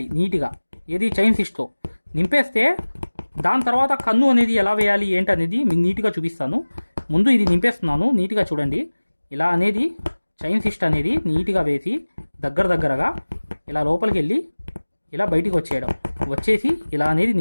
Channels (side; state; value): both; inverted; correlation -1.00